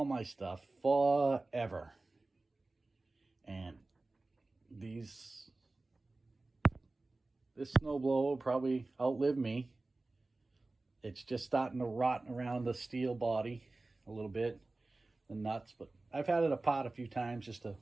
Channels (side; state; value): left; quieter; 3.1 dB